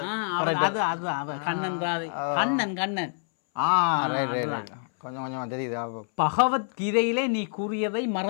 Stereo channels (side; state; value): right; silent; 60 dB below the other